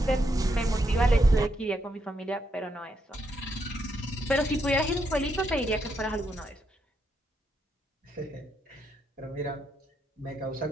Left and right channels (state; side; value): normal; both; correlation 0.79